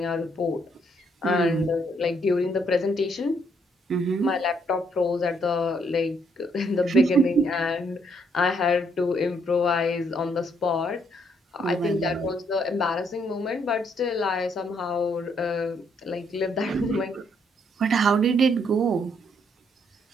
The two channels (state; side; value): normal; both; correlation 0.71